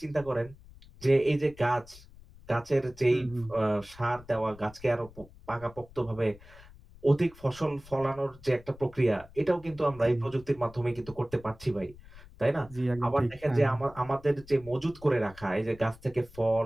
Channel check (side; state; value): left; noise; rumble, 21 dB below the sound